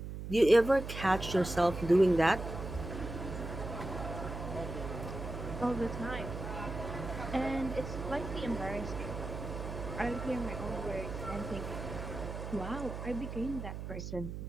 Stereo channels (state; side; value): noise; right; hum, 7 dB below the sound